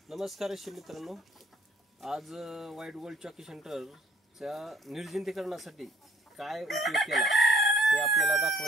नमस्कार रेशीम मित्रांनो, आज व्हाईट गोल्ड चॉकी सेंटरच्या निर्जंतुकीकरणासाठी काय उपयोग केला ते आपल्याला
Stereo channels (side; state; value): both; normal; correlation 0.61